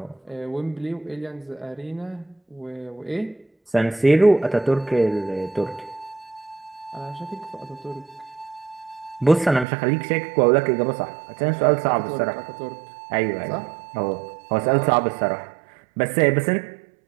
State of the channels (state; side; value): drops out; left; at 9.7 s